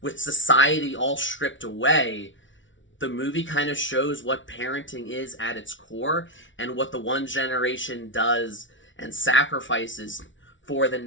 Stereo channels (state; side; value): late; right; 0.56 ms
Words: with society all stripped away, the movie kind of shows what parenting is at its core and what the one generation does and sacrifices for the